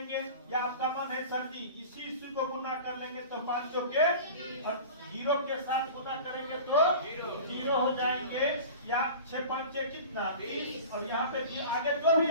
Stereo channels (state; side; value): inverted; both; correlation -0.38